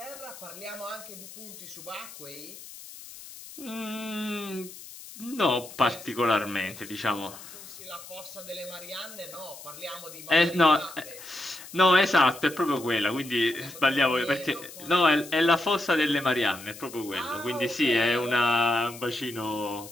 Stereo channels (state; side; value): noise; left; hiss, 15 dB below the sound